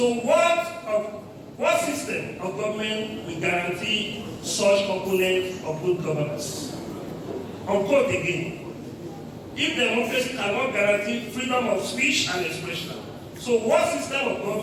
what system of government will guarantee such component of good governance? Unquote again. If democracy cannot guarantee freedom of speech and expression, so So what system of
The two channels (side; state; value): both; identical; correlation 1.00